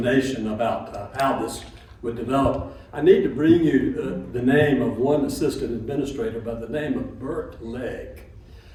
about how this would develop. I need to bring you the name of one assistant administrator by the name of Bert Legg,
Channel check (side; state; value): both; identical; correlation 1.00